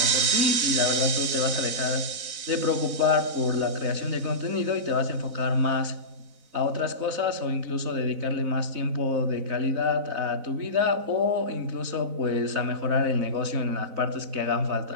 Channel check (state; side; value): late; left; 4.0 ms